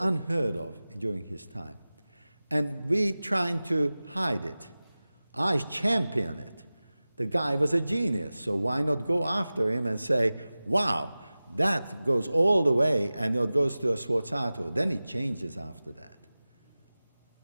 of during his time. And we trying to hide it. I champion it. The guy was a genius, so why not go after him and say, wow, that goes all the way, and it goes to a sforzato. Then it changes after that.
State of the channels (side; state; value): both; inverted; correlation -0.97